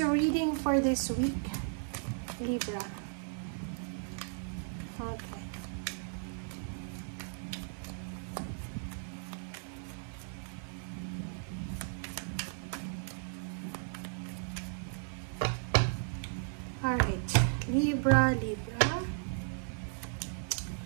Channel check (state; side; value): silent; left; 54 dB below the other